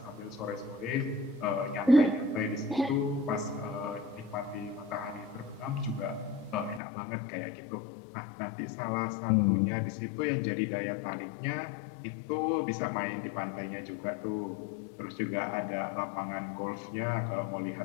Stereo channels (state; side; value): drops out; right; at 6.8 s